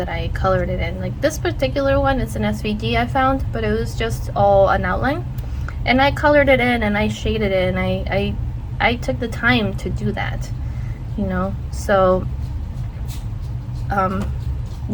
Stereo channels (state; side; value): identical; both; correlation 1.00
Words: I colored it in. Like this particular one, it's an SVG I found, but it was just all an outline. And I colored it in and I shaded it, and I took the time to do that, you know? So,